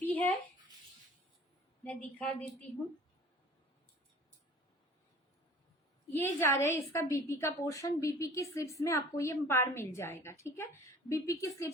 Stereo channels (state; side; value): normal; both; correlation 0.47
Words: है मैं दिखा देती हूँ। ये जा रहा है इसका बीपी का पोर्शन। बीपी की स्लिप्स में आपको ये पार मिल जाएगा, ठीक है? बीपी की